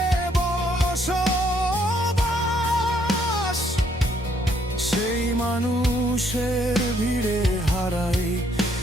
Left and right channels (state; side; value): normal; both; correlation 0.69